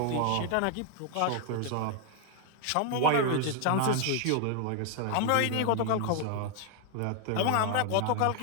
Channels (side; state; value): both; different; correlation 0.00